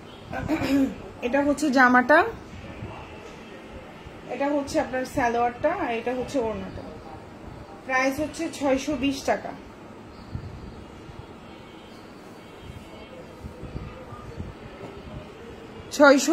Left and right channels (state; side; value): identical; both; correlation 1.00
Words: এটা হচ্ছে জামাটা এটা হচ্ছে আপনার সালোয়ারটা আর এটা হচ্ছে ওড়নাটা প্রাইস হচ্ছে 620 টাকা